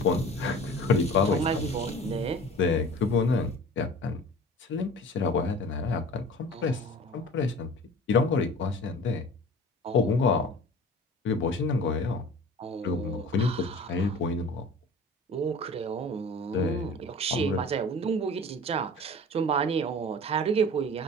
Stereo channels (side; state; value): both; normal; correlation 0.41